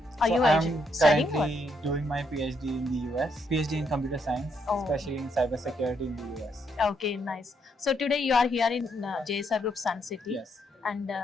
Are So you I'm studying or? currently doing my PhD in the US, PhD in computer science, Oh. especially in cybersecurity in the US. Okay, nice. So today you are here in JSR Group Sun City, Yes. and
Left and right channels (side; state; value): both; normal; correlation 0.75